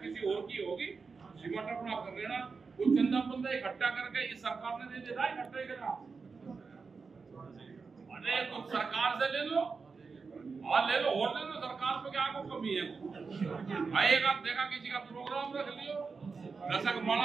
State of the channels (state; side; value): quieter; left; 4.8 dB